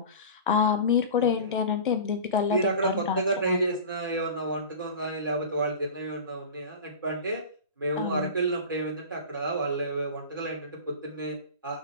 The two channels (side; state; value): both; inverted; correlation -0.33